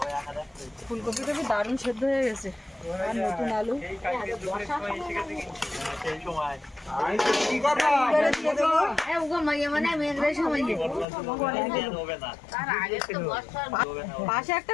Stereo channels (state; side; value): drops out; right; at 11.1 s